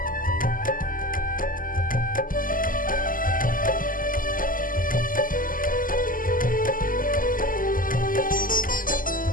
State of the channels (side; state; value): right; late; 0.41 ms